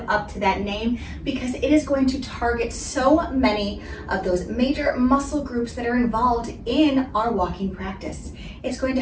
up to that name because it is going to target so many of those major muscle groups that are involved in our walking practice. It's going to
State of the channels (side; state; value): both; identical; correlation 1.00